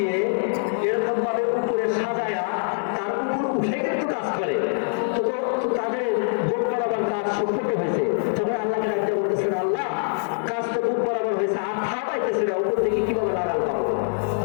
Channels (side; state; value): right; silent; digital silence